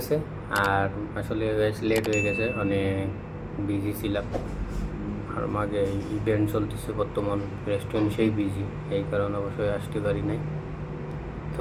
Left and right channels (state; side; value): identical; both; correlation 1.00